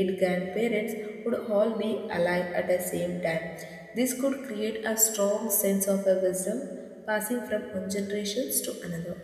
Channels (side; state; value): both; identical; correlation 1.00